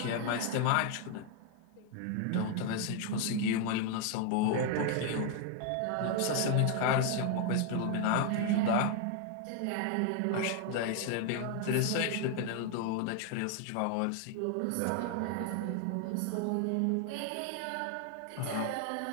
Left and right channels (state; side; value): different; both; correlation 0.00